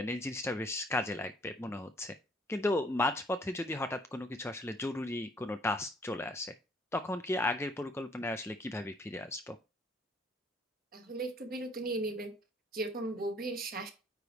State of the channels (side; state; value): both; normal; correlation 0.61